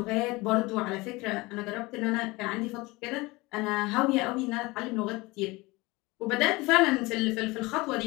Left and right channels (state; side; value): quieter; right; 22.7 dB